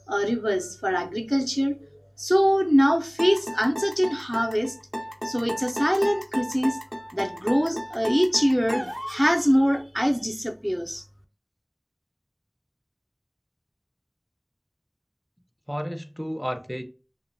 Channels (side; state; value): both; identical; correlation 1.00